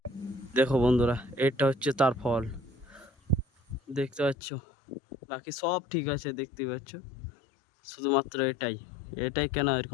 দেখো বন্ধুরা, এটা হচ্ছে তার ফল, দেখতে পাচ্ছ? বাকি সব ঠিক আছে, দেখতে পাচ্ছ, শুধুমাত্র এটাই। এটাই কেন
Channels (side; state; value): right; drops out; at 4.4 s